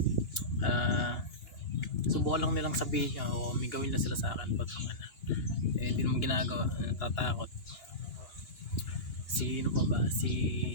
Subukan lang nilang sabihin niya o may gawin na sila sa akin, putang na. Hindi naman ginagawa. Natatakot. Sino pa ba? Si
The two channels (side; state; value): right; late; 2.9 ms